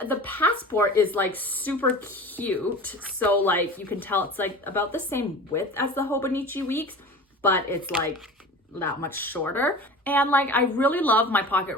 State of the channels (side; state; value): both; normal; correlation 0.37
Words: the passport is like super cute. So like you can tell it's like about the same width as the Hobonichi weeks, but it's like that much shorter. And like I really love my pocket